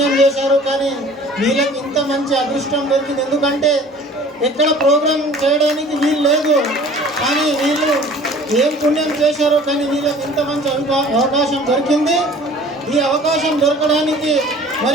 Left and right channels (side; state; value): both; normal; correlation 0.48